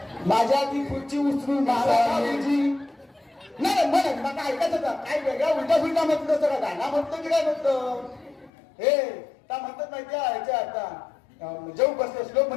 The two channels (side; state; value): right; drops out; at 8.5 s